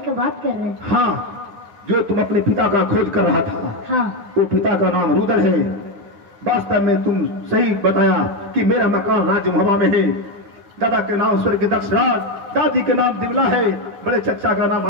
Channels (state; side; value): late; left; 9.9 ms